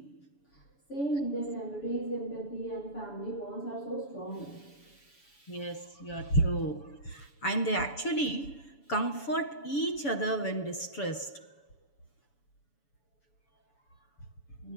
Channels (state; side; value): late; right; 7.0 ms